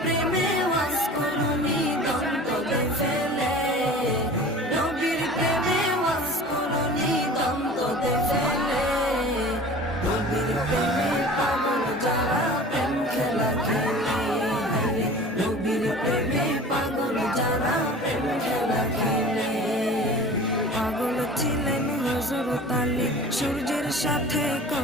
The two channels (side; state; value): both; normal; correlation 0.41